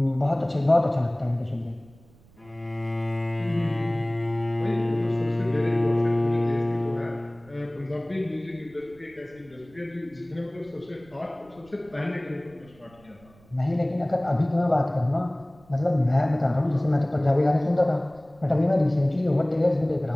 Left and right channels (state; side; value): noise; right; rumble, 27 dB below the sound